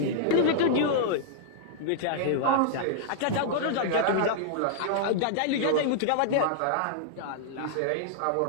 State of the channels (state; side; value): different; both; correlation -0.01